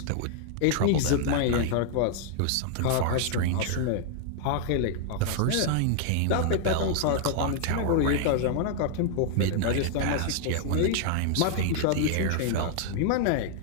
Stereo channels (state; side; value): different; both; correlation 0.00